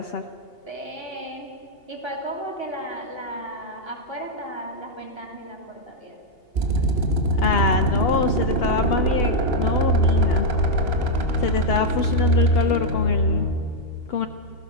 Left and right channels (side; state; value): right; late; 2.8 ms